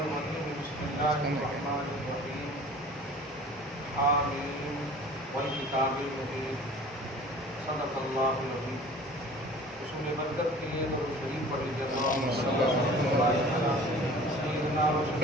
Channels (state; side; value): normal; both; correlation 0.45